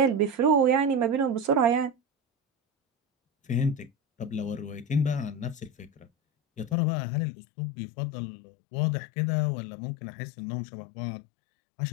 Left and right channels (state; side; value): drops out; right; at 6.8 s